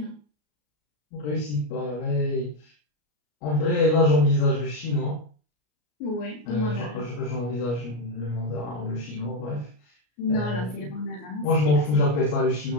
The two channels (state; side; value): late; right; 33 ms